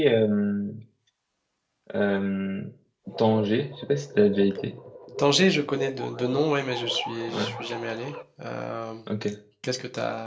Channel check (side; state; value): both; identical; correlation 1.00